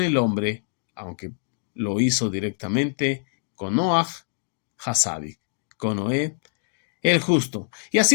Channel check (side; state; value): right; silent; digital silence